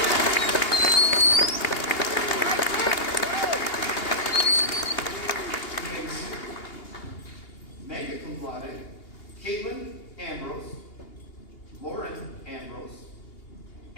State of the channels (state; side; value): late; right; 2.8 ms